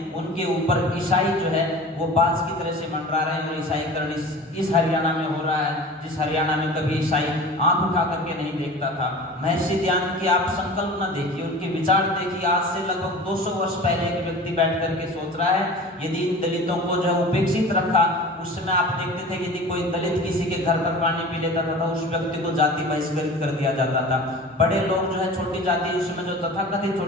उनके ऊपर ईसाई जो है वो बाज की तरह से मंडरा रहे हैं। और ईसाईकरण इस हरियाणा में हो रहा है, जिस हरियाणा में कभी ईसाई आंख उठा करके नहीं देखता था। महर्षि दयानंद की आप संकल्पना देखिए, उनके विचार देखिए। आज से लगभग 200 वर्ष पहले एक व्यक्ति बैठ करके सोच रहा है, यदि इन दलितों को जो उपेक्षित रखा, उस समय आप देखते थे यदि कोई दलित किसी के घर पर पानी पी लेता था, उस व्यक्ति को जाति बहिष्कृत कर दिया जाता था। बड़े लोग जो है छोटी जाति, उस समय जो तथाकथित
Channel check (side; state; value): both; normal; correlation 0.38